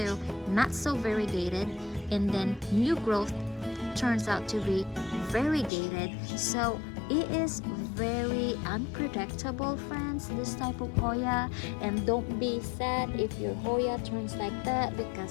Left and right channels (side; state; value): right; drops out; at 5.7 s